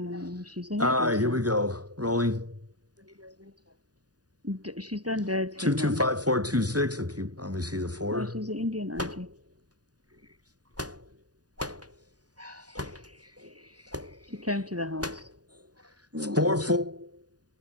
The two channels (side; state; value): left; late; 0.68 ms